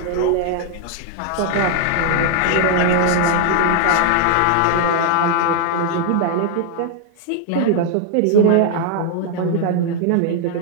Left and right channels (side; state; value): both; different; correlation 0.00